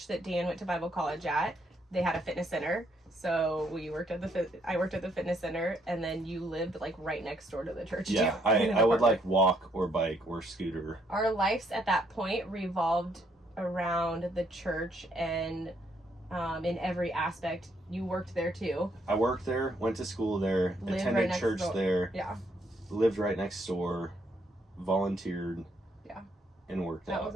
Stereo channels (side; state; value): both; normal; correlation 0.71